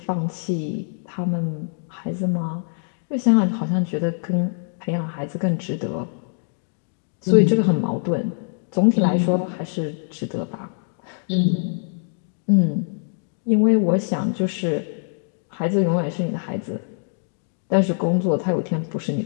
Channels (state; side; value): silent; right; digital silence